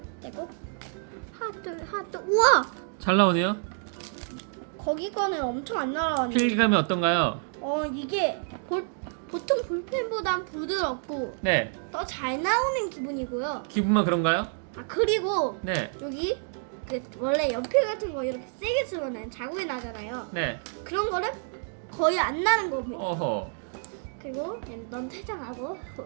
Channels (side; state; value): left; silent; 59 dB below the other